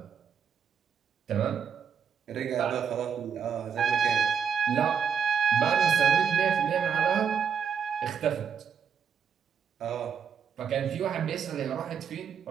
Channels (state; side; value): quieter; left; 7.2 dB